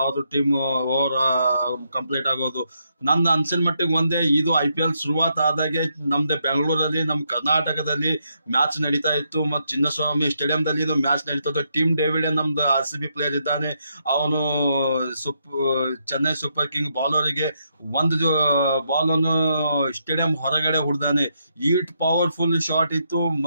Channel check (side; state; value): both; inverted; correlation -0.78